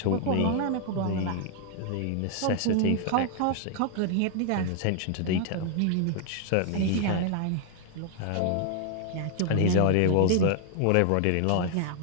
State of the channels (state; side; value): different; both; correlation 0.00